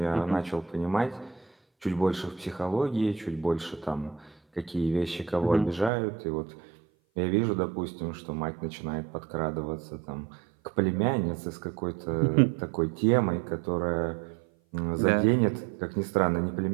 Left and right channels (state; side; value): drops out; left; at 5.9 s